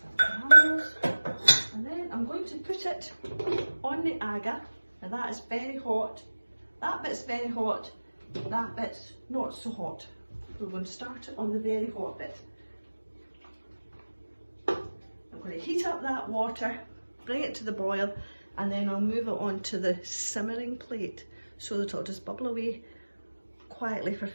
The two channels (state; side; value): inverted; both; correlation -1.00